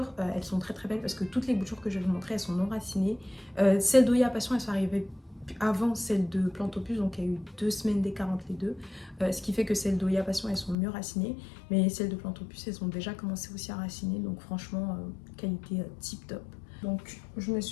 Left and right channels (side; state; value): right; drops out; at 10.8 s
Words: elles sont très très belles parce que toutes les boutures que je vais vous montrer elles sont non racinées. Celles d'Oya Passion elles sont arrivées avant celle de Plantopus, donc il y a eu 2 semaines d'écart entre les deux, ce qui fait que celles d'Oya Passion elles sont mieux racinées, mais celles de Plantopus elles ont déjà commencé aussi à raciner, donc franchement qualité tip top. Donc je me